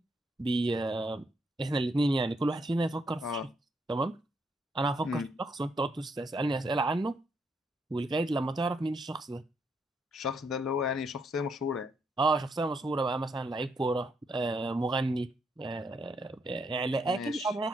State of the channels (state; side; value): normal; both; correlation 0.76